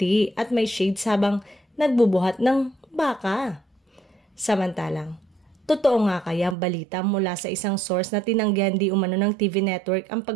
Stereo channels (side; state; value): left; drops out; at 6.6 s